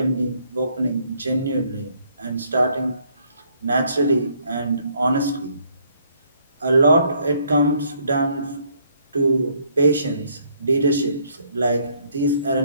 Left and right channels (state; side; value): inverted; both; correlation -0.67